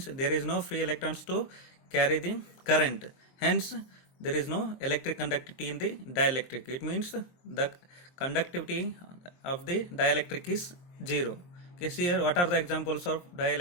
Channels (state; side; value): late; right; 23 ms